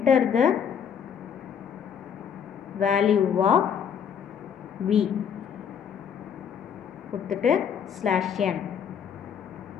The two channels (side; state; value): right; quieter; 7.8 dB